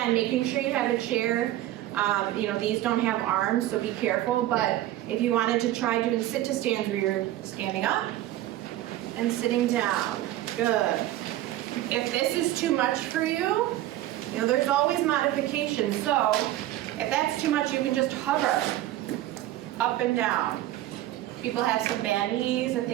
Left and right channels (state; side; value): quieter; left; 14.5 dB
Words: making sure you have a chair. These don't have arms, so be careful, but if you wanted to try doing sit to stands where you're standing up and sitting down, good. If this is too much for you, there's always modifications. So if that's too much, you can just hover up and down. People have some bad knees and